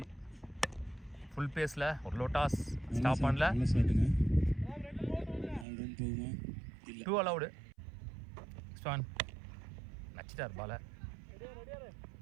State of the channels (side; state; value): left; drops out; at 5.7 s